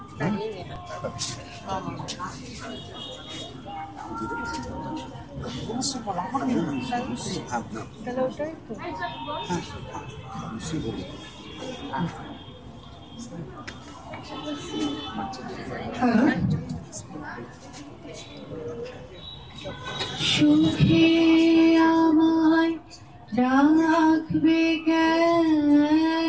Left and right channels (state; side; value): identical; both; correlation 1.00